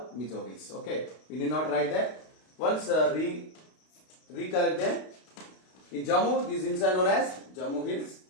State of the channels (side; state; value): right; late; 32 ms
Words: Mizo Hills. Okay, we need not write that. Once recollect them. In Jammu, these hills are known as Jammu Hills.